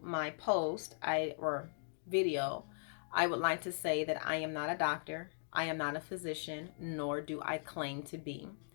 my post, or video, I would like to say that I am not a doctor, I am not a physician, nor do I claim to be.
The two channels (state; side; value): silent; right; digital silence